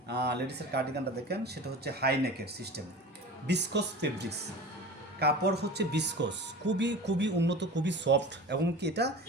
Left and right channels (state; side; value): normal; both; correlation 0.35